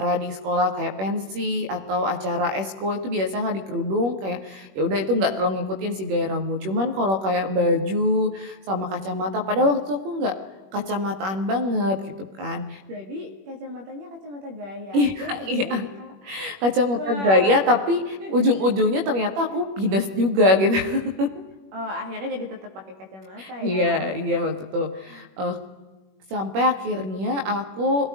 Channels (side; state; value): left; late; 21 ms